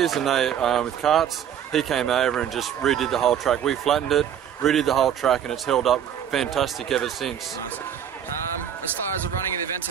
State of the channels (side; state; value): left; quieter; 9.3 dB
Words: and they with carts, he came over and just redid the whole track. We flattened it, redid the whole track, and it's held up fantastic ever since. Nice. As far as the running of the event